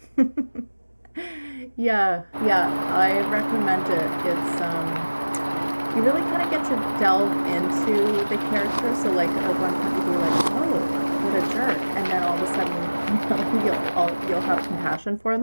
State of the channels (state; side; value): inverted; both; correlation -1.00